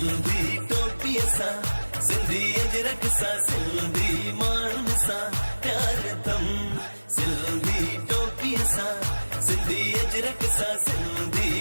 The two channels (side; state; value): both; inverted; correlation -1.00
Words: टोपी सा सिंधी अजरक सा सिंधी माण्हुनि सां प्यार तम सिंधी टोपी सा सिंधी अजरक सा